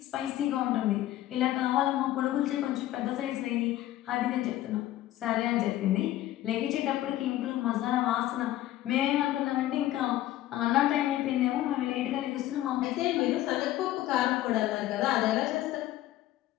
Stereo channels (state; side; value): quieter; right; 14.4 dB